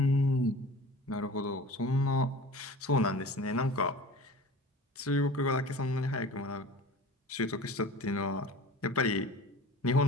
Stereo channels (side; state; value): both; normal; correlation 0.39